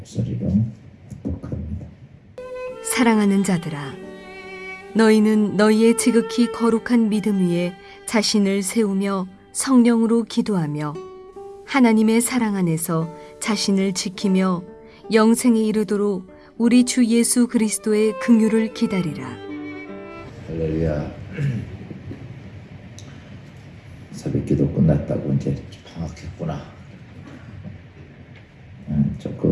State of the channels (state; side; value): identical; both; correlation 1.00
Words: 합독합니다. 사랑하는 자들아, 너희는 너희의 지극히 거룩한 믿음 위에 자신을 세우며 성령으로 기도하며 하나님의 사랑 안에서 자신을 지키며 영생에 이르도록 우리 주 예수 그리스도의 긍휼을 기다리라. 할렐루야. 새벽기도 끝났다고 이제 방학했구나.